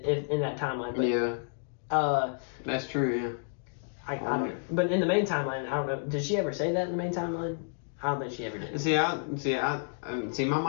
in that timeline. But, yeah. That's true. Yeah. I don't know. But in the main timeline, I don't know. Did she ever say that in the main timeline? I don't think she ever did. See, my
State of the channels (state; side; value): silent; right; digital silence